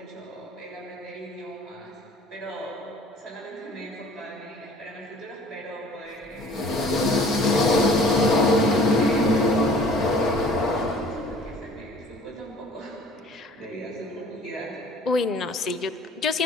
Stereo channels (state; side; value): normal; both; correlation 0.51